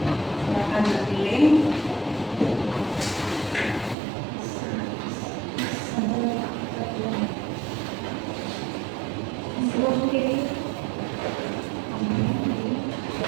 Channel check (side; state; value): left; drops out; at 4.0 s